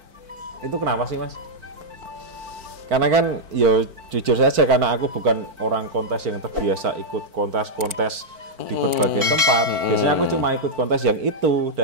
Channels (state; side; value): late; left; 4.5 ms